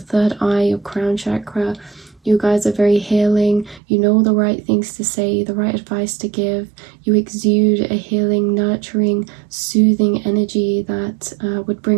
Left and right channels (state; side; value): drops out; left; at 3.8 s